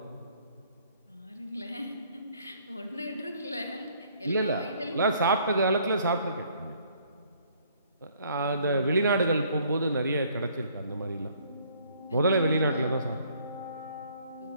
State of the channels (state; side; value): inverted; both; correlation -0.62